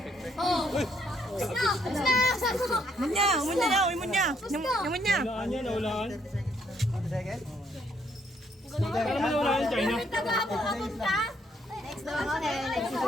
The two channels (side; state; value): both; normal; correlation 0.71